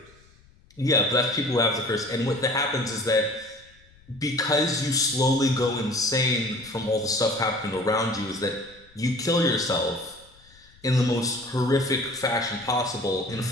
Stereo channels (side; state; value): left; noise; rumble, 28 dB below the sound